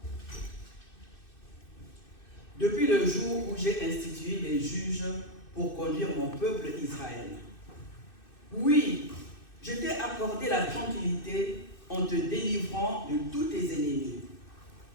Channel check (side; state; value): right; late; 2.6 ms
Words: Depuis le jour où j'ai institué les juges pour conduire mon peuple Israël. Oui, je t'ai accordé la tranquillité en te délivrant de tous tes ennemis.